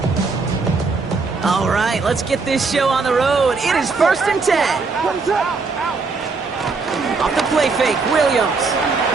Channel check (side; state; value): left; quieter; 4.3 dB